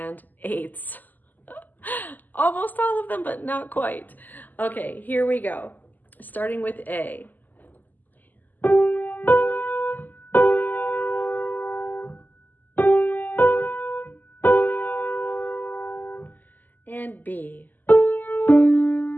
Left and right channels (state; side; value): late; right; 0.085 ms